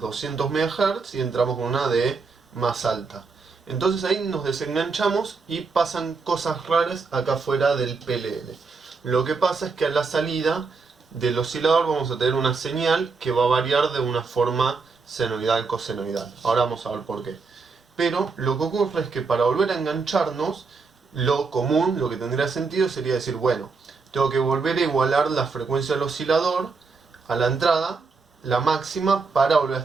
200 MHz y entramos con una de más alta. Entonces ahí nos desenganchamos y pasan cosas raras acá afuera del PLL. Lo que pasa es que a la salida del oscilador vamos a tener una señal que va a variar de una forma senoidal, cosenoidal. Ahora vamos a ver por qué. Pero lo que ocurre es que para volver a engancharnos, lo común, lo que tendría sentido sería decir, bueno, tengo que volver a igualar la frecuencia del oscilador a la entrada, la máxima, para volver a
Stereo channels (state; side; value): quieter; left; 4.6 dB